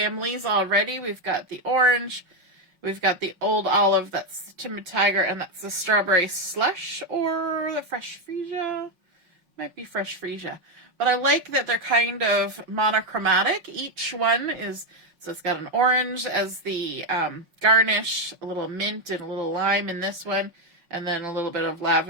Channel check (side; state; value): left; late; 5.5 ms